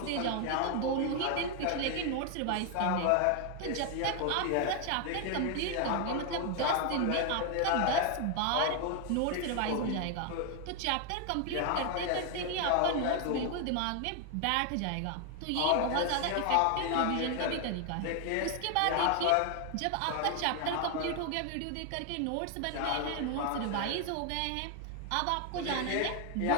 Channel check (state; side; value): different; both; correlation 0.00